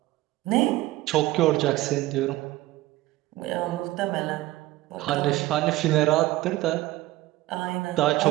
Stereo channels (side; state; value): left; quieter; 17.6 dB